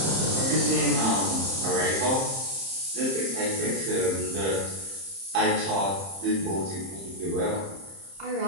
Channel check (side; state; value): left; late; 30 ms